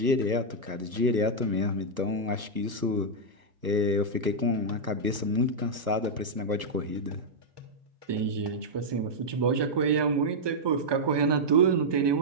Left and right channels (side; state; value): left; late; 1.2 ms